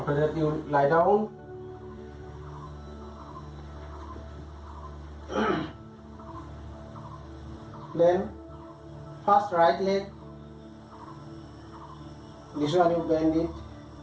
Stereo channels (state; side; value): identical; both; correlation 1.00